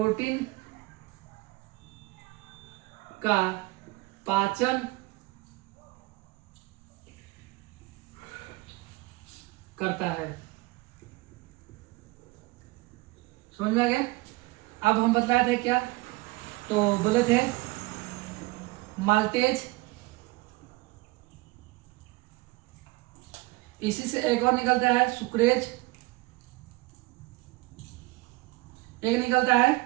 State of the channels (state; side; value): quieter; left; 22.4 dB